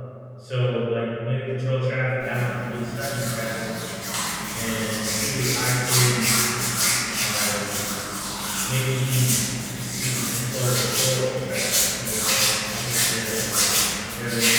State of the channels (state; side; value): identical; both; correlation 1.00